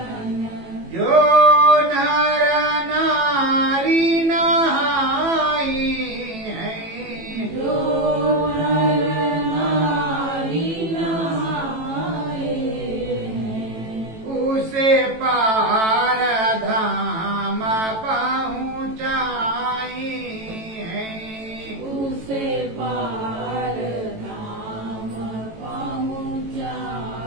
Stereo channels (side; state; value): left; late; 18 ms